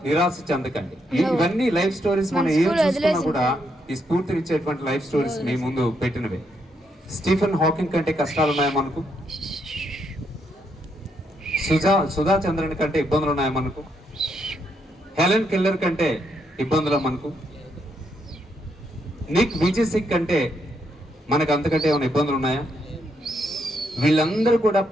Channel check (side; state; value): both; normal; correlation 0.77